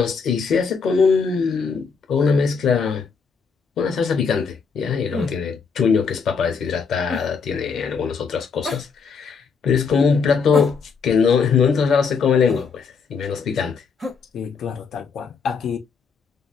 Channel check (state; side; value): quieter; right; 5.5 dB